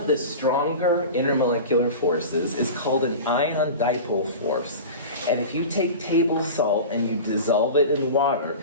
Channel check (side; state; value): both; inverted; correlation -0.32